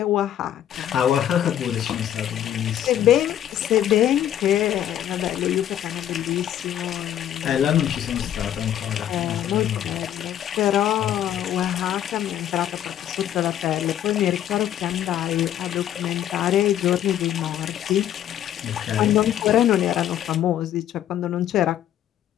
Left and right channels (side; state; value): right; quieter; 11.1 dB